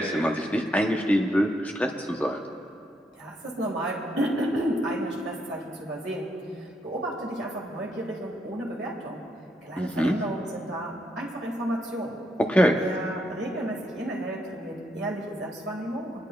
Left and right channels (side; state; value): both; normal; correlation 0.77